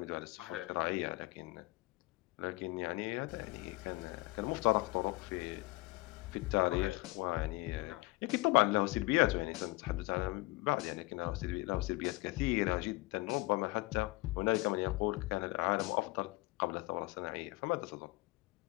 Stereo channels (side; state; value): right; quieter; 22.4 dB